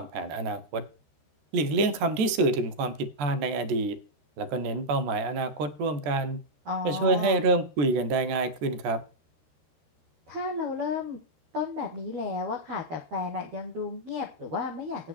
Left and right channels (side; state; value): left; late; 14 ms